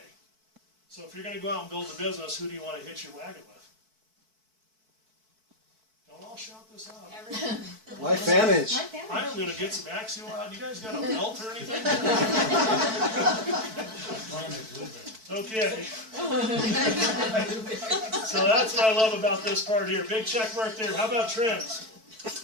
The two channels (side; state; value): left; late; 4.6 ms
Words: So if you're going to go out and build a business, who do you want to hitch your wagon with? Don't all shout this out. LifeVantage. I am going to get some Axial out. You guys got a belt or anything? Okay. So that's what I love about this part here. Big check mark there. How about trends?